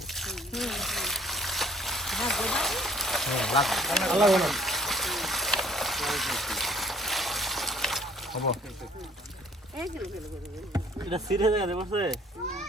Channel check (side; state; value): both; normal; correlation 0.57